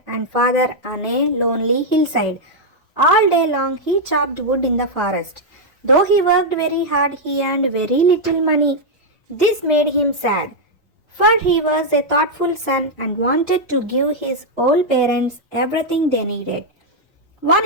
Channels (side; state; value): both; normal; correlation -0.02